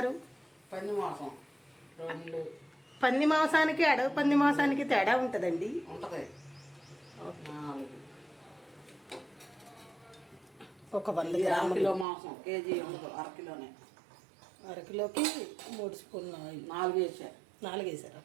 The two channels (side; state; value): left; drops out; at 12.1 s